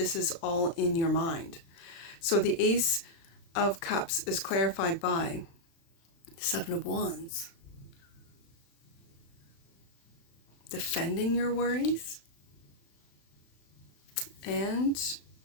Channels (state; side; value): late; right; 35 ms